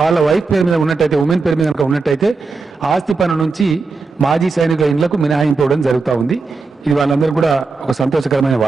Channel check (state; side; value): quieter; left; 4.2 dB